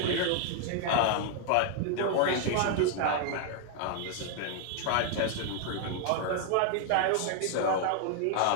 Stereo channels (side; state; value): both; different; correlation 0.00